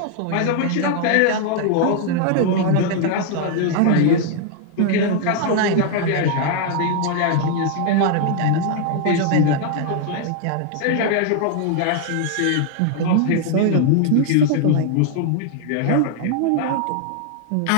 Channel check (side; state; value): both; different; correlation 0.00